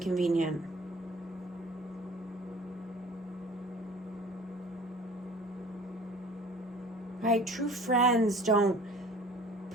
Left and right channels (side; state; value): both; normal; correlation 0.47